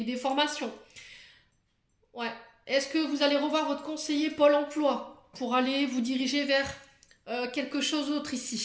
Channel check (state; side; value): identical; both; correlation 1.00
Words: ou des formations? Ouais. Est-ce que vous allez revoir votre conseiller Pôle emploi pour aller vous diriger vers quelque chose d'autre